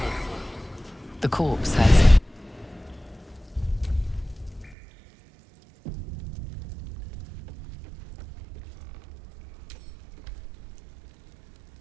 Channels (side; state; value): left; drops out; at 4.8 s